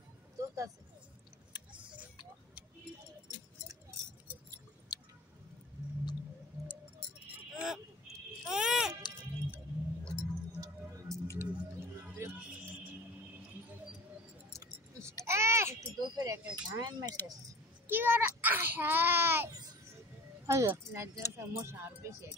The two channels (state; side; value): normal; both; correlation 0.40